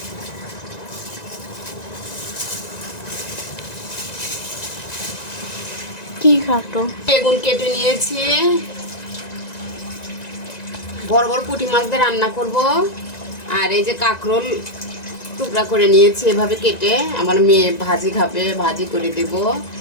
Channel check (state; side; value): late; right; 1.9 ms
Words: কি কাটো? বেগুন কেটে নিয়েছি, বড় বড় পুঁটি মাছ দিয়ে রান্না করব। আর এই যে কাঁকরোল টুকরা করে নিয়েছি এভাবে কেটে, আমার মেয়ে ভাজি খাবে, ভাজি করে দেব।